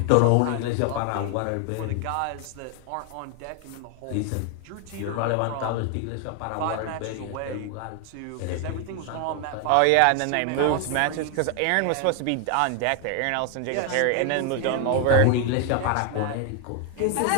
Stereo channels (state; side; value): different; both; correlation 0.01